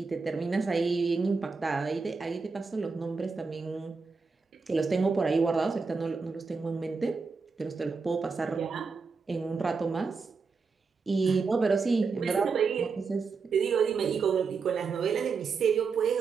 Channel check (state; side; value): quieter; left; 4.8 dB